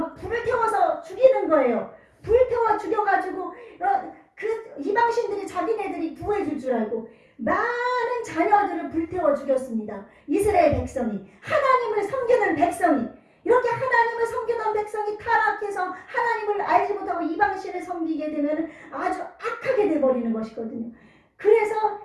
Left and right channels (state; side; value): identical; both; correlation 1.00